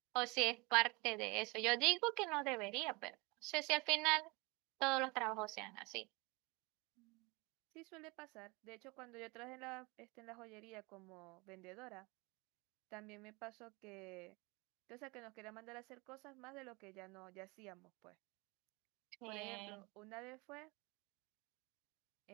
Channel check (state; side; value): quieter; left; 26.5 dB